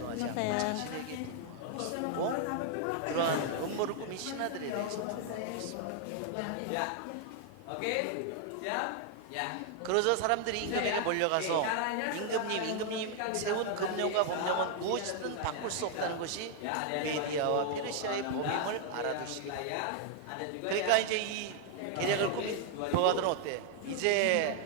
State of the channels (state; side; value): different; both; correlation 0.00